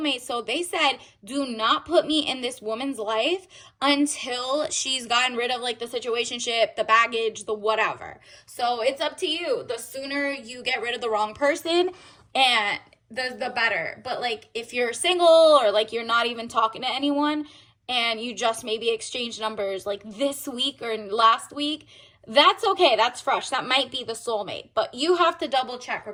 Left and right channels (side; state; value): both; identical; correlation 1.00